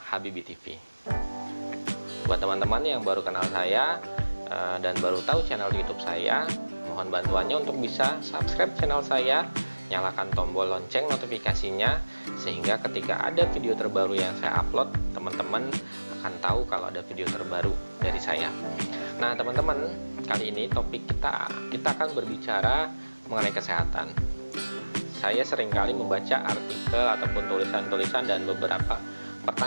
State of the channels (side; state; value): both; inverted; correlation -1.00